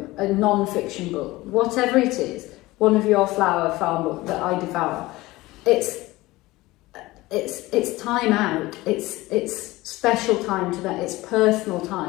a non-fiction book, whatever it is, one of your flower farm book that I devour, it's time out, it's special time to that, it's personal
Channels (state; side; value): quieter; right; 19.4 dB